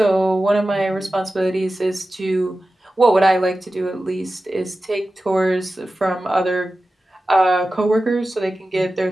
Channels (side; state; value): both; normal; correlation 0.94